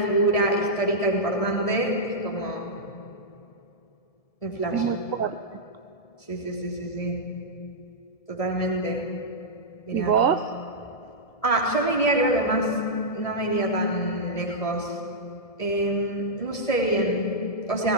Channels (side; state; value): right; late; 1.7 ms